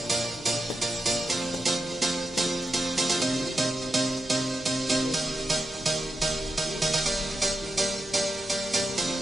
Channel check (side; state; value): both; normal; correlation 0.88